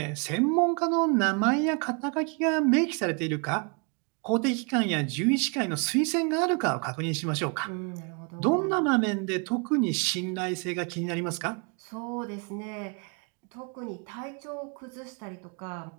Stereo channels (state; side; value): quieter; left; 35.0 dB